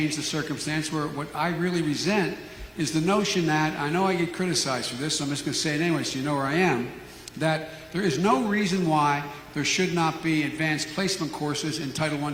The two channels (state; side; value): identical; both; correlation 1.00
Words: the circumstance where what I really resent is the notion that, I know I get criticized for this, so I'm just going to say it anyway so you know where I am, that there is no reason why there should not be advanced placement courses in Title I